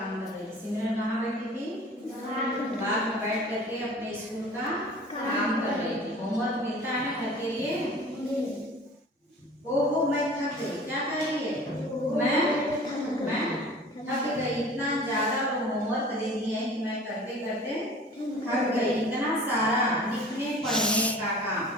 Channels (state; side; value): normal; both; correlation 0.45